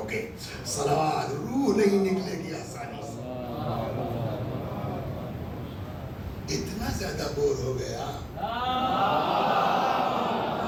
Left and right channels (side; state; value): both; identical; correlation 1.00